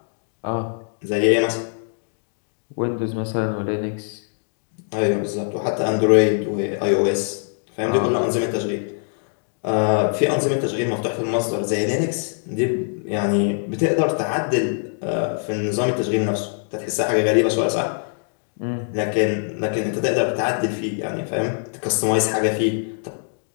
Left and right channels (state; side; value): silent; right; digital silence